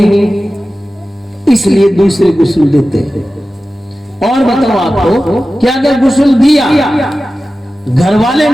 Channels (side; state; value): both; normal; correlation 0.95